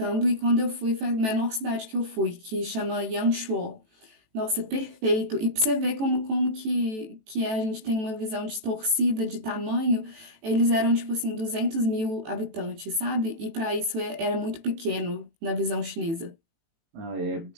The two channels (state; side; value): late; left; 18 ms